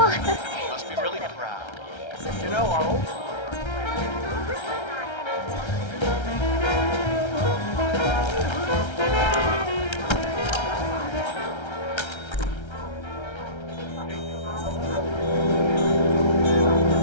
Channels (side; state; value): right; late; 1.3 ms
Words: Must be really proud. You know, our old